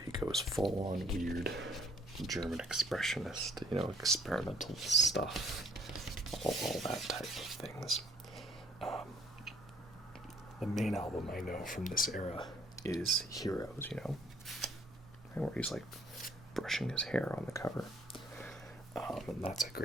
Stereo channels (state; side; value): normal; both; correlation 0.59